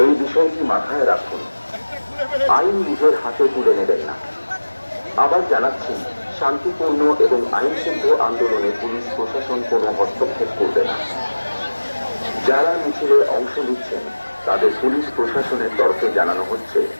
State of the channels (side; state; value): both; inverted; correlation -1.00